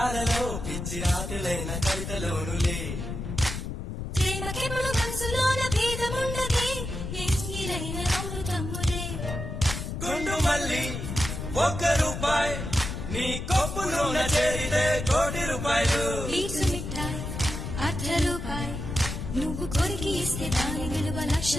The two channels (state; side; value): noise; left; rumble, 5 dB below the sound